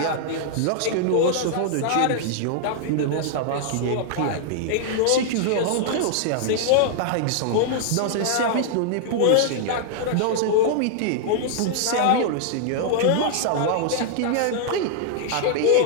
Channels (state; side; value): different; both; correlation -0.01